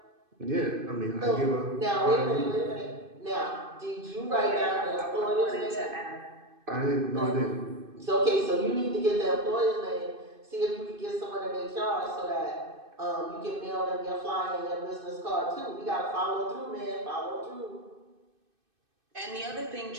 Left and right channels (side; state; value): left; late; 2.5 ms